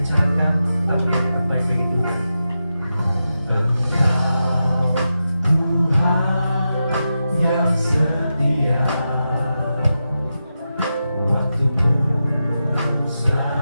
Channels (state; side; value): inverted; both; correlation -0.89